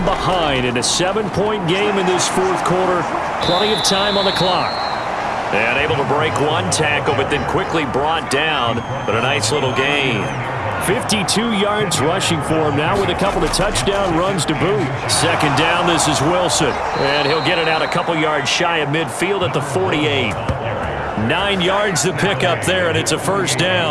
behind in a 7-point game in this fourth quarter. Plenty of time on the clock. And able to break one tackle, but then quickly brought down. But a nice little gain. 52 yards rushing for him now with a couple of touchdown runs to boot. Second down, this is Wilson. And he'll get it out a couple yards shy of midfield at the 48. 9 yards to pick up there, and it's a first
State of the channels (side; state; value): both; identical; correlation 1.00